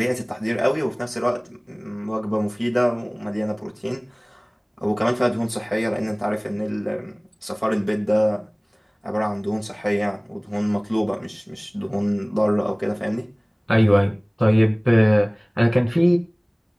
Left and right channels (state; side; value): identical; both; correlation 1.00